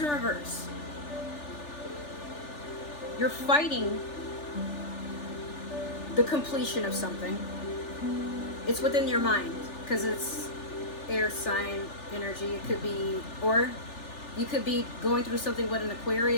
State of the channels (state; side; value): late; right; 3.4 ms